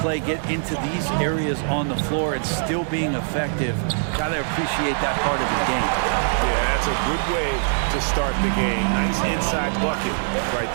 Clay get into these areas on the floor and still being effective. Gotta appreciate that part of the game. Yeah, that's a good way to start the game. Nice inside bucket right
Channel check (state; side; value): silent; left; digital silence